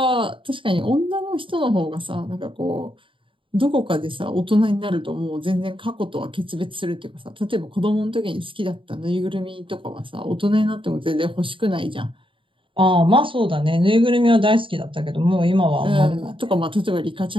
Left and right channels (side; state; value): left; late; 0.25 ms